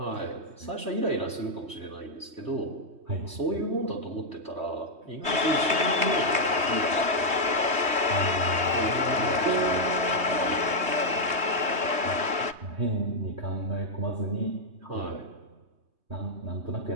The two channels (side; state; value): left; late; 3.2 ms